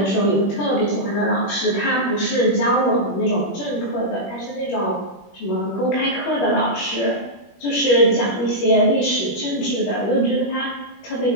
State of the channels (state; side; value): late; right; 21 ms